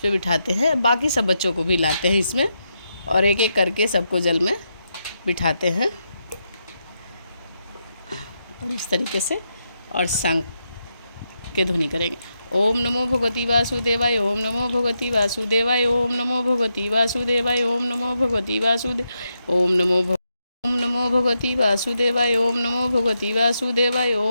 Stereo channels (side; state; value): both; inverted; correlation -0.84